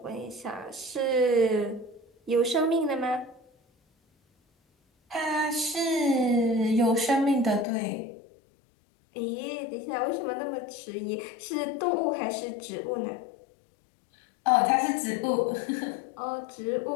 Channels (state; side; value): drops out; right; at 7.7 s